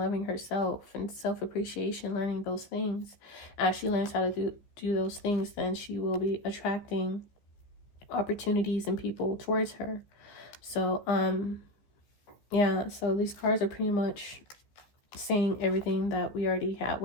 herself, and self-appreciation, learning those things. As she learns how to do those things, then she will be attracting opportunities and people towards her. So yeah, so these cards are pretty much saying everything that we already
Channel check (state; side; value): late; right; 14 ms